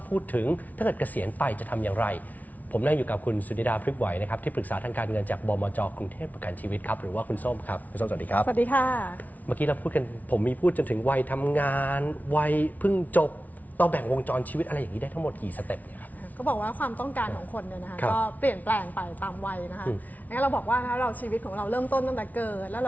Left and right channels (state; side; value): late; right; 0.075 ms